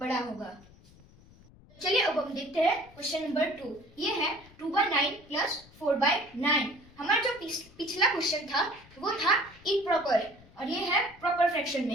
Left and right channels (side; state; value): left; noise; rumble, 24 dB below the sound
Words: होगा। चलिए अब हम देखते हैं क्वेश्चन नंबर 2। ये है 2/9 प्लस 4/9। हमारा जो पिछला क्वेश्चन था वो था इम्प्रॉपर, और ये है प्रॉपर फ्रैक्शन